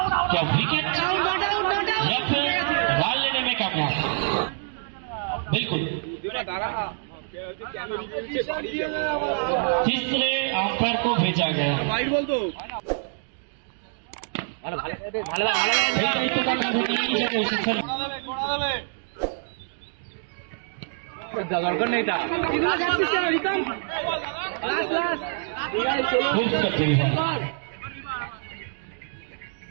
क्या विकेट या फिर बॉल लेने में कामयाब? बिल्कुल, तीसरे अंपायर को भेजा गया। दरकार नहीं था, खूब करते हैं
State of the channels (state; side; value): silent; left; digital silence